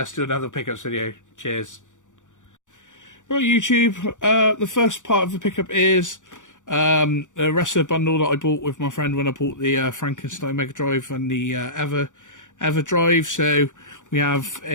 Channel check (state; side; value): late; right; 0.86 ms